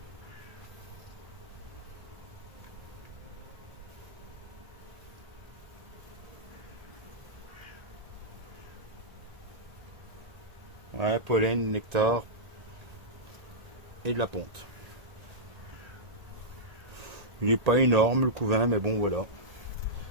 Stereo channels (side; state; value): left; late; 1.8 ms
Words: Ouais, pollen, nectar et de la ponte. Il n'est pas énorme le couvain, mais bon voilà.